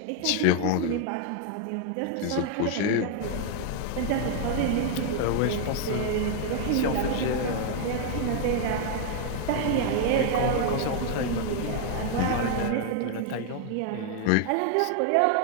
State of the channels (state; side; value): different; both; correlation 0.01